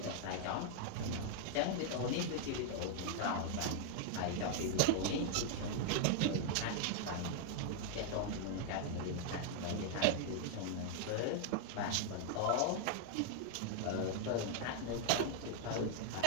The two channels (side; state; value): both; different; correlation 0.00